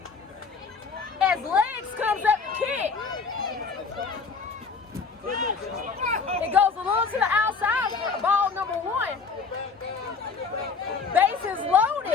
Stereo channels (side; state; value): right; quieter; 5.1 dB